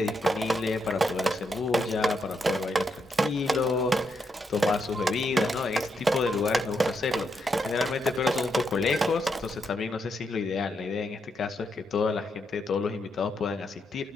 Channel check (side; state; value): both; normal; correlation 0.80